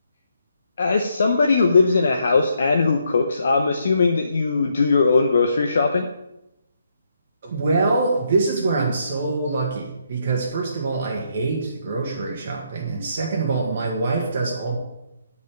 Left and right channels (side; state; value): both; inverted; correlation -0.76